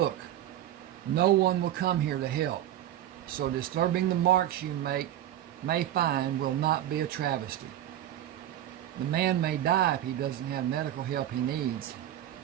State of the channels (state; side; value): quieter; left; 12.1 dB